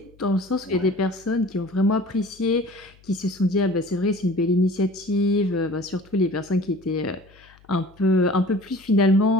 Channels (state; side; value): noise; left; hum, 28 dB below the sound